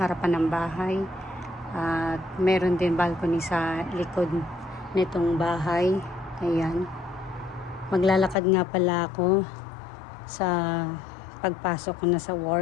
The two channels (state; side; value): drops out; right; at 8.3 s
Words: ng bahay. At meron din balcony sa likod nitong bahay. Ayan. Maglalakad nga pala ako sa pagpasok ko na sa